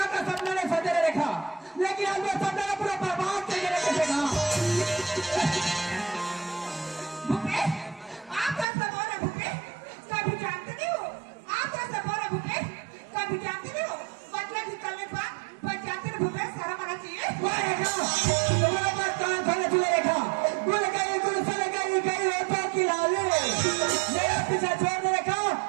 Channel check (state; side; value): drops out; left; at 8.7 s